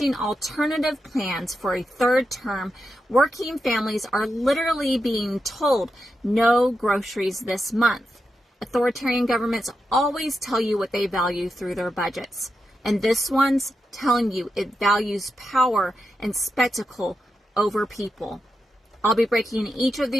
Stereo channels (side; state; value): both; normal; correlation 0.87